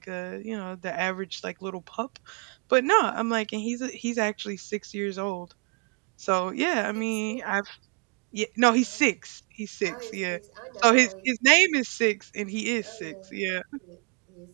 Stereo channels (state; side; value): quieter; left; 35.4 dB